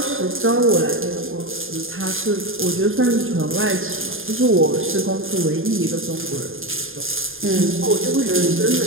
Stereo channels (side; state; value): left; late; 0.59 ms